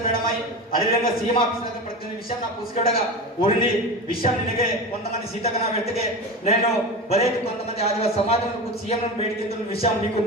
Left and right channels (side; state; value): both; normal; correlation 0.26